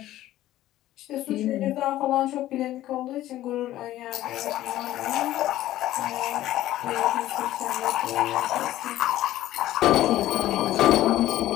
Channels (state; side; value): quieter; right; 14.4 dB